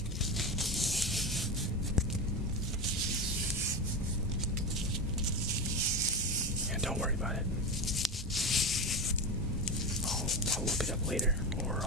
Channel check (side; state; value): both; normal; correlation 0.20